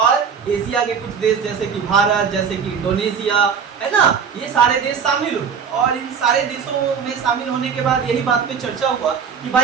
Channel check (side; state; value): left; quieter; 6.7 dB